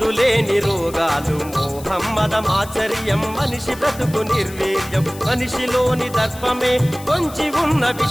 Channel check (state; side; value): noise; left; hiss, 17 dB below the sound